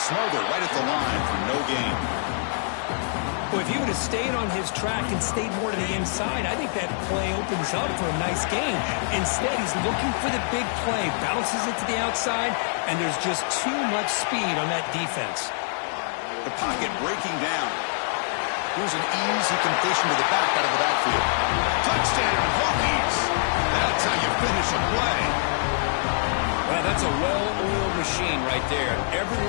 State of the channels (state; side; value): silent; right; digital silence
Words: right at the line for no gain. Well, if he would have stayed on his track and stayed more to the inside, I think that play opens up for a nice gain. Instead, he's looking for the big play, bounces it to the outside, and there's just too much speed on that defense. The pocket breaking down. Here's an easy completion to the back out of the backfield. Touchdown, Hokies! That's how you finish a play. Well, that's a well-oiled machine right there.